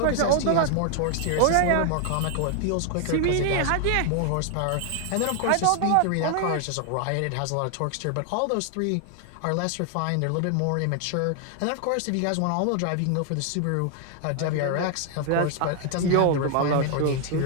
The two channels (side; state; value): both; different; correlation 0.00